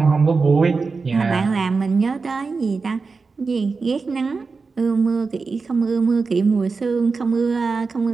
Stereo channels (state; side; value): quieter; left; 4.5 dB